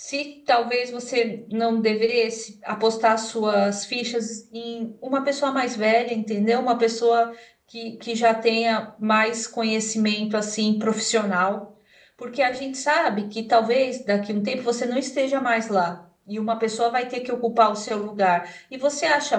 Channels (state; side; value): identical; both; correlation 1.00